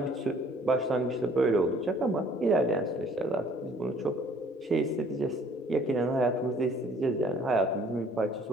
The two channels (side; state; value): both; normal; correlation 0.57